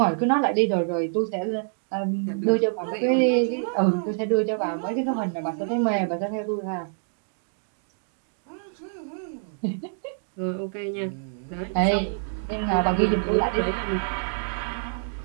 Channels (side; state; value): left; silent; digital silence